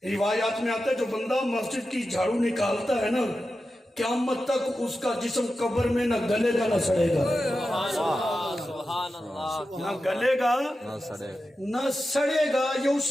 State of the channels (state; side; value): normal; both; correlation 0.91